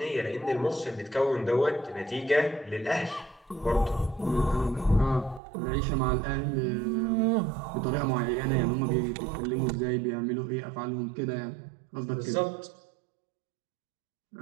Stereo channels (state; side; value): drops out; left; at 5.4 s